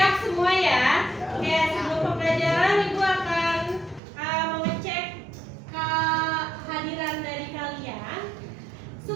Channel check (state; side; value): drops out; left; at 4.0 s